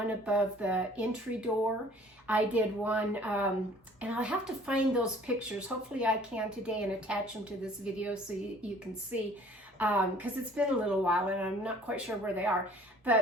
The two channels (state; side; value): normal; both; correlation 0.53